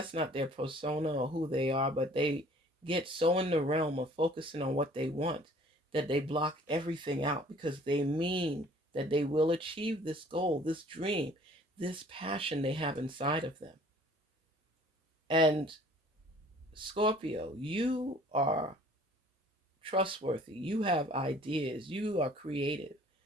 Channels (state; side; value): normal; both; correlation 0.53